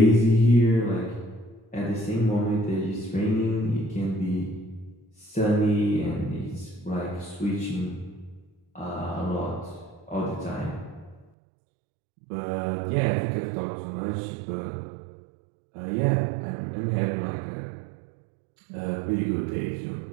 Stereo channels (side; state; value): left; drops out; at 11.2 s